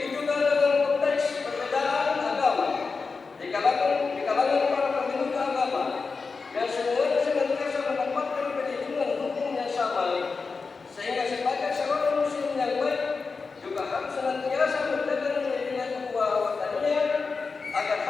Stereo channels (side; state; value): right; quieter; 4.6 dB